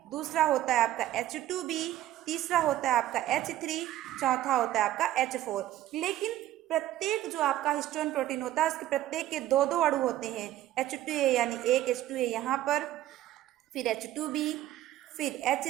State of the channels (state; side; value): quieter; left; 13.8 dB